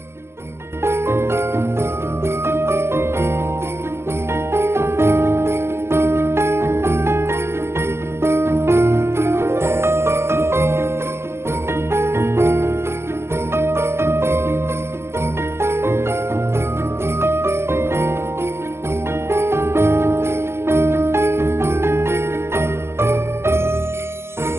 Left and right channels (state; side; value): late; left; 0.12 ms